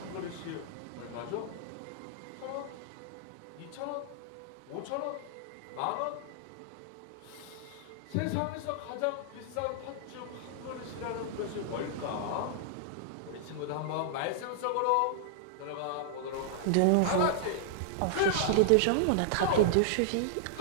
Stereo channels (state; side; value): different; both; correlation -0.01